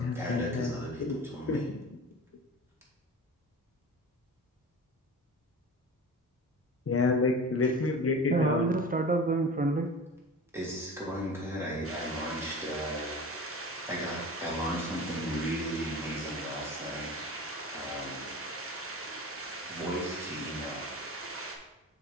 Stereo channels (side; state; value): both; normal; correlation 0.35